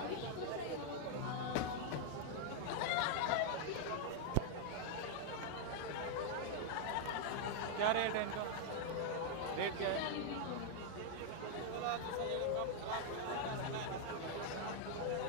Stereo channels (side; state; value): both; different; correlation 0.00